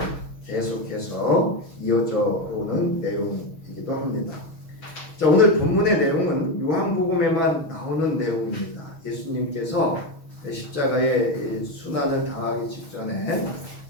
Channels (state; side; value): late; right; 6.3 ms